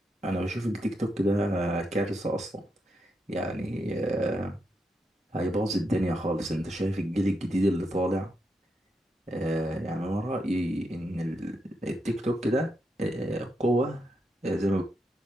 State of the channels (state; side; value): normal; both; correlation 0.83